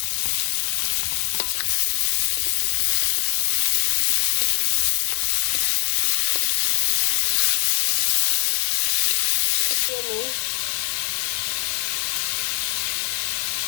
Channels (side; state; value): right; quieter; 38.8 dB